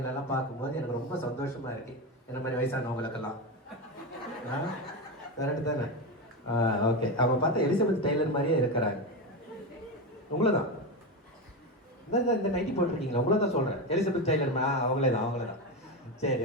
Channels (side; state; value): both; normal; correlation 0.16